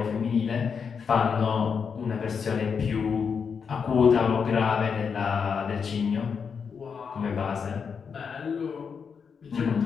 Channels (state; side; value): quieter; right; 6.2 dB